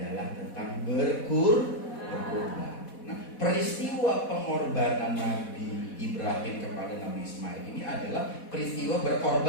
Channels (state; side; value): late; right; 4.1 ms